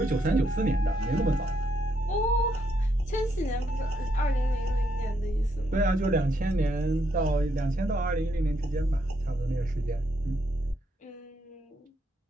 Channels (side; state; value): both; normal; correlation 0.76